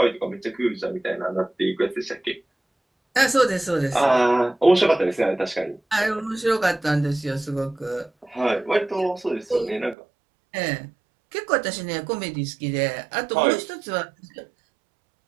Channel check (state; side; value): drops out; left; at 10.0 s